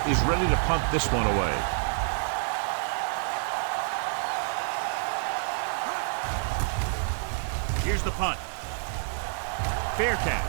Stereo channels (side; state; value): left; silent; 59 dB below the other